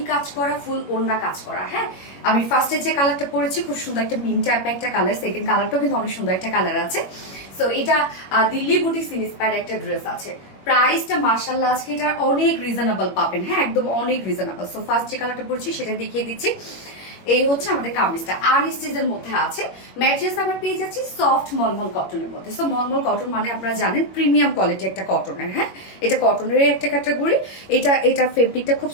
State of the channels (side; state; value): right; late; 21 ms